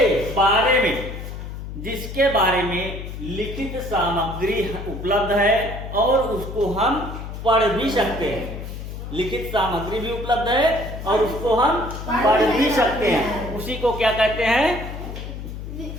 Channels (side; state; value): left; noise; hum, 9 dB below the sound